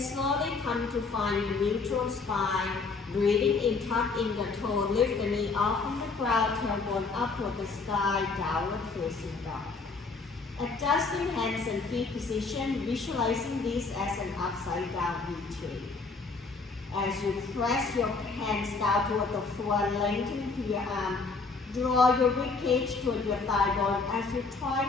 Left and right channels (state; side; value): quieter; right; 4.2 dB